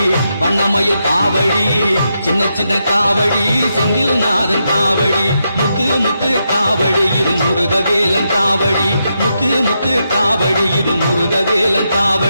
வண்ணமயில் காவடி சின்ன சின்ன காவடி செந்தில் நாதன் காவடி முத்து முத்து காவடி இரு முருகவேலன் காவடி முத்து முத்து காவடி இரு முருகவேலன்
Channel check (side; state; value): both; inverted; correlation -0.83